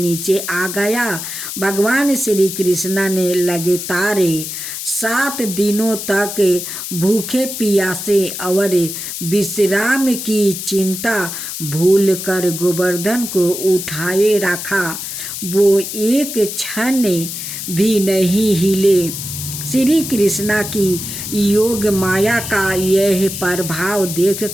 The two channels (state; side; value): noise; left; hiss, 7 dB below the sound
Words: आ गया। भगवान श्री कृष्णा ने लगातार 7 दिनों तक भूखे प्यासे और विश्राम की चिंता भूल कर गोवर्धन को उठाए रखा। वो एक क्षण भी नहीं हिले। श्री कृष्णा की योग माया का यह प्रभाव